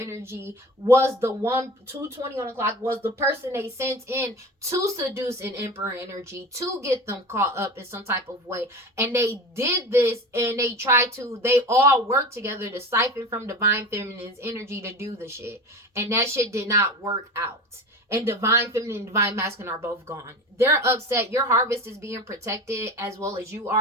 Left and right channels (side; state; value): both; normal; correlation 0.32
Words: was the one, 2:20 on the clock, was the person they sent in to seduce an emperor energy, to get them caught up in some type of way. And they did this, and they all worked together to siphon from divine feminine's energy to do the shit. And that shit did not work out. And divine feminine and divine masculine are both gone. They're upset. Your harvest is being protected, as well as you